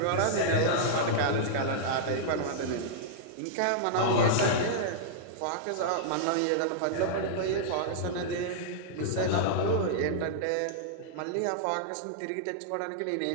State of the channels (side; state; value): both; different; correlation -0.02